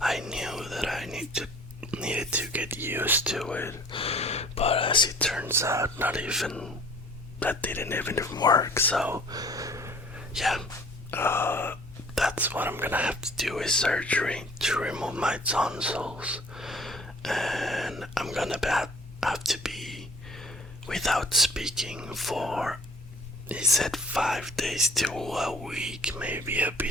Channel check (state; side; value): normal; both; correlation 0.51